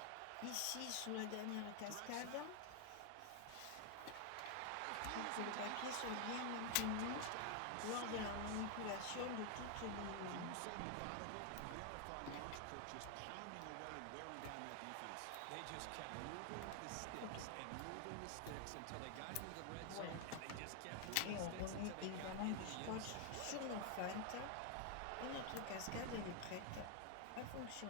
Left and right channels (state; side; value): different; both; correlation 0.00